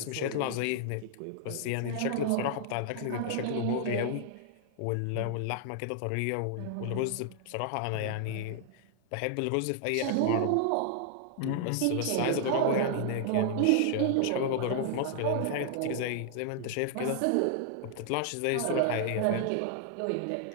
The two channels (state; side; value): different; both; correlation -0.01